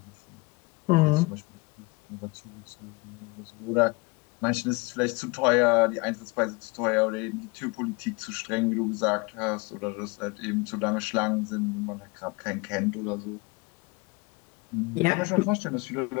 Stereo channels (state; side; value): quieter; right; 26.1 dB